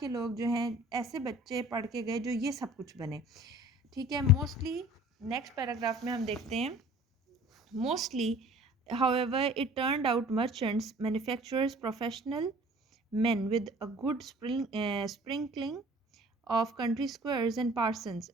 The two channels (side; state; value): both; normal; correlation 0.48